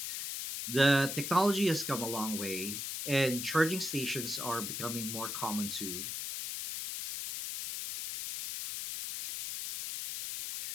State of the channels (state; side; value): noise; left; hiss, 4 dB below the sound